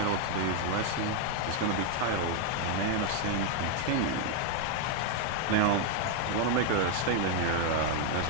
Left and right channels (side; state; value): both; different; correlation 0.01